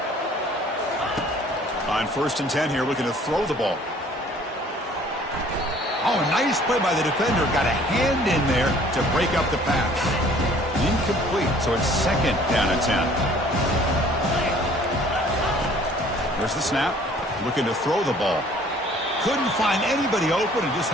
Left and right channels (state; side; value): normal; both; correlation 0.55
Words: On 1st and 10 here, looking to throw the ball. Oh, a nice play by the defender. Got a hand in there to break up the pass. Incomplete, so it's second down and 10. There's the snap. Looking to throw the ball. Couldn't find anybody open and just